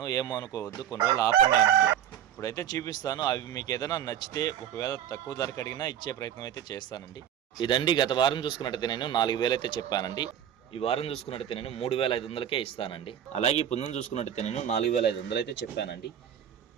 ఏమో అనుకోవద్దు, కొన్ని రోజులు ఆపండి అంటున్నారు. ఇప్పుడైతే చూపిస్తాను. అవి మీకు ఏదైనా నచ్చితే ఒకవేళ తక్కువ ధరకు అడిగినా ఇచ్చే ప్రయత్నం అయితే చేస్తానండి. ఇదండి గత వారం చూసుకున్నట్టయితే నేను 4,000 అయితే చెప్పానండి. ఈ వారం చూసుకున్నట్టయితే నేను 3,500కే ఇస్తానండి. అలాగే ఈ పుంజును చూసుకున్నట్టయితే నేను 4,500 అయితే చెప్పానండి.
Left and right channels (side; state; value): left; quieter; 9.9 dB